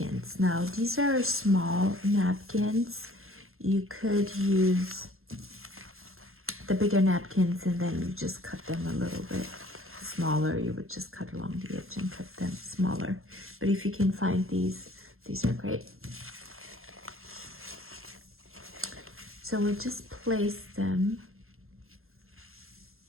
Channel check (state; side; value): late; left; 0.61 ms